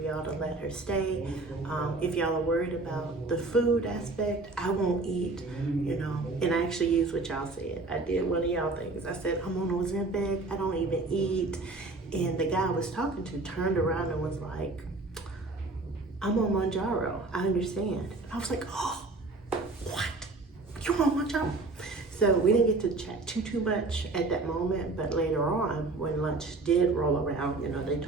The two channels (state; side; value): quieter; left; 3.4 dB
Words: to let her stay? If y'all are worried about the food aspect, I won't eat, you know. And I actually used what y'all said. I did one of y'all things. I said, I'm on Ozempic, I don't even eat. And the guy I was talking to turned around and was like, I'm on Mounjaro, I understand. I was like, oh, what? You on Mounjaro? So we didn't get to chat too much at that moment, but later on, when lunch did roll around, you know, they